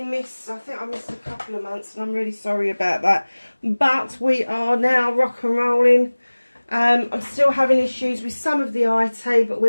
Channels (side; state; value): both; inverted; correlation -1.00